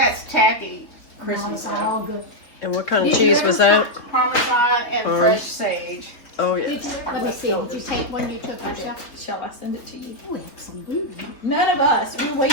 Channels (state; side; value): late; right; 3.7 ms